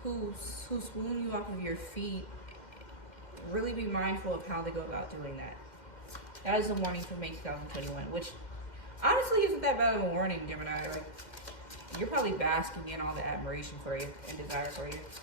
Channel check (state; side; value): late; right; 2.1 ms